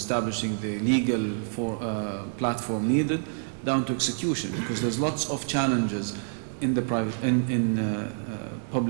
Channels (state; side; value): silent; left; digital silence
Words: the legal platform needed, down to execution, because there's lots of challenges in the